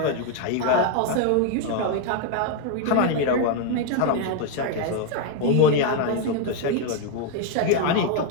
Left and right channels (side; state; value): both; different; correlation 0.01